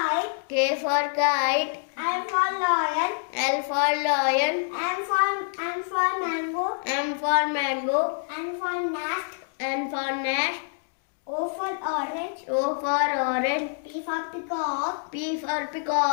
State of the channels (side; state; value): right; silent; digital silence